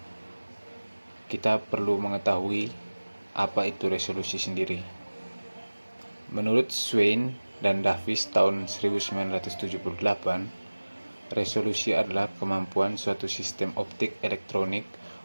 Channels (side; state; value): both; inverted; correlation -1.00